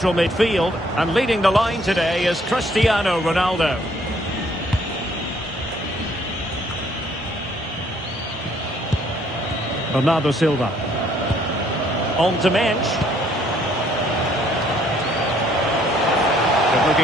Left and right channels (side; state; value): both; normal; correlation 0.64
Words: midfield. And leading the line today is Cristiano Ronaldo. Bernardo Silva. On to Mendes. Good